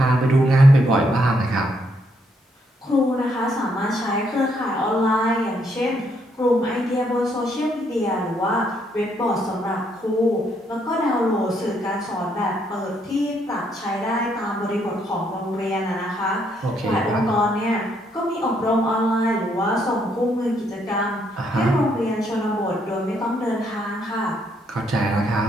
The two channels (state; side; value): normal; both; correlation 0.73